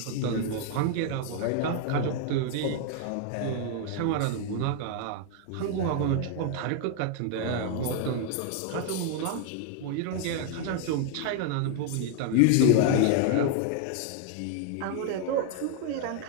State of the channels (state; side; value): different; both; correlation 0.00